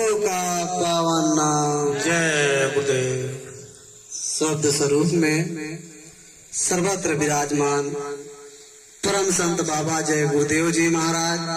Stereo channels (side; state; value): both; identical; correlation 1.00